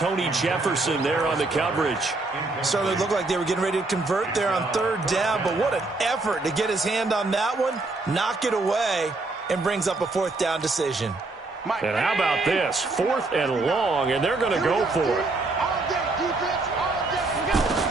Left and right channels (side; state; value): left; quieter; 3.3 dB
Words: Jefferson there on the coverage. Certainly looked like they were getting ready to convert there on 3rd down, but what an effort to get his hand on that one, knock it away, and brings up a 4th down decision. And how about this? 4th and long, and they're going to go for it.